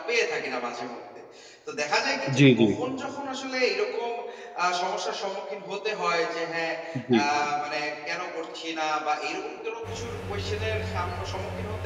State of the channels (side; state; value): both; identical; correlation 1.00